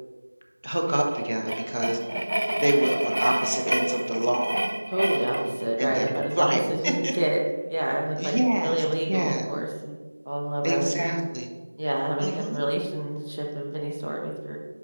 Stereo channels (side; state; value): both; inverted; correlation -1.00